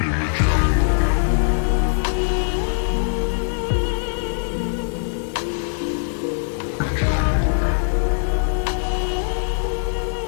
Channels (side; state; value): right; silent; digital silence